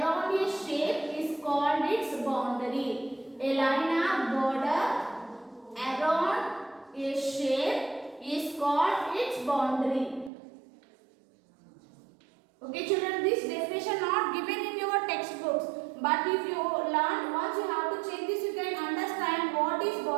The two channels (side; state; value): left; drops out; at 10.3 s